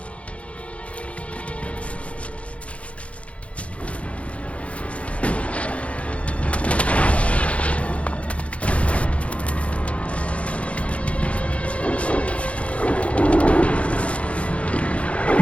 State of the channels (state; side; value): late; right; 0.063 ms